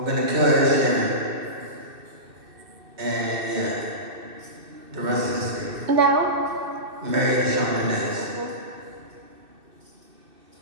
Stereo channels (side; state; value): left; late; 2.6 ms